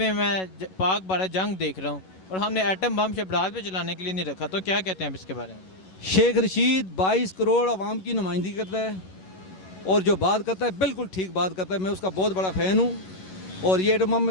मैं पाक भारत जंग देख रहा हूँ और हमने एटम बम शबरात पे चलाने के लिए नहीं रखा। तो क्या कहते हैं आप इसके बारे में? शेख रशीद 22 करोड़ आवाम की नुमाइंदगी करता है और जो बात करता है बिल्कुल ठीक बात करता है। मैं उसका बहुत बड़ा फ़ैन हूँ और ये एटम बम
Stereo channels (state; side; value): late; right; 11 ms